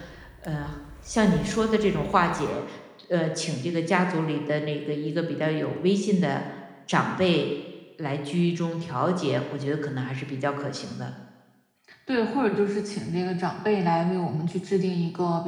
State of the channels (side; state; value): both; identical; correlation 1.00